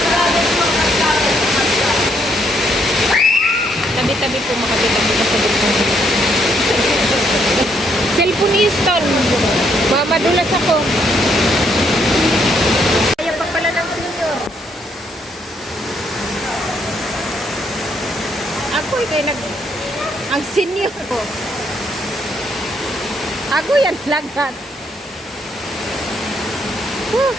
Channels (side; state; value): both; normal; correlation 0.72